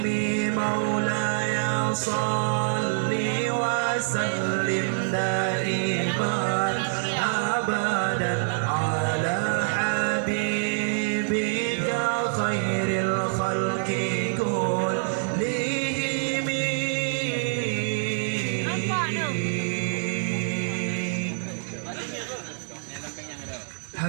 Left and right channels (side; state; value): left; silent; 61 dB below the other